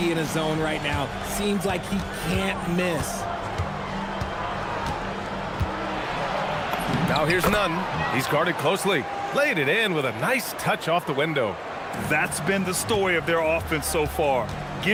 in a zone right now. Seems like he can't miss. Now here's Nunn. He's guarded closely. Laid it in with a nice touch off the window. That's been the story of their offense so far,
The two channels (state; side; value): identical; both; correlation 1.00